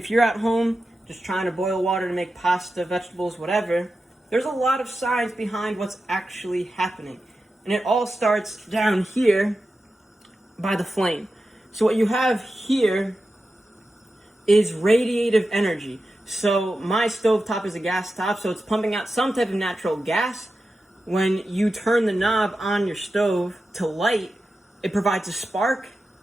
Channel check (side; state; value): both; normal; correlation 0.91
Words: you're at home just trying to boil water to make pasta, vegetables, whatever, there's a lot of science behind what's actually happening. And it all starts down here by the flame. So what you have here is radiative energy. So my stovetop is a gas top, so it's pumping out some type of natural gas. When you turn the knob on your stove to light, it provides a spark,